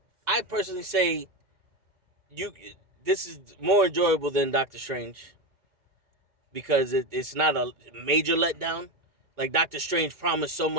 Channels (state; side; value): late; left; 2.1 ms